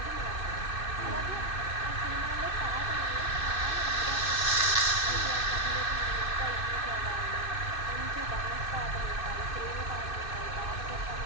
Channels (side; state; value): right; late; 2.6 ms